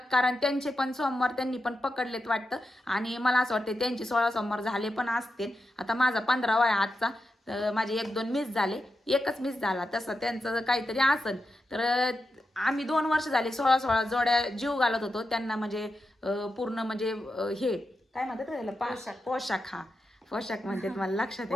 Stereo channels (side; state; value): both; normal; correlation 0.88